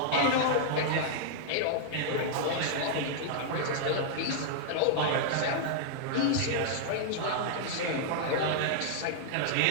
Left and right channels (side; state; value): both; different; correlation -0.01